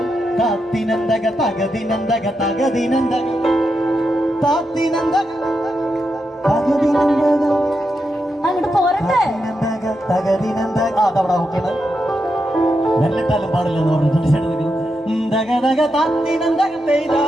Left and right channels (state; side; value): normal; both; correlation 0.85